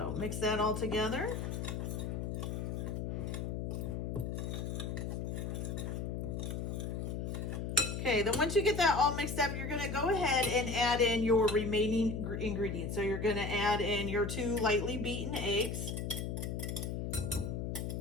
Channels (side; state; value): left; noise; hum, 3 dB below the sound